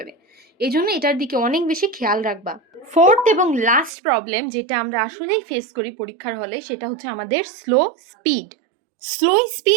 এই জন্য এটার দিকে অনেক বেশি খেয়াল রাখবা। ফোর্থ এবং লাস্ট প্রবলেম যেটা আমরা আসলেই ফেস করি পরীক্ষার হলে সেটা হচ্ছে আমাদের স্লো স্পিড। স্লো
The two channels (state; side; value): drops out; left; at 3.9 s